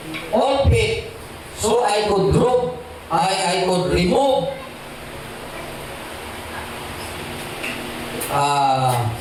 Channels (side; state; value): both; identical; correlation 1.00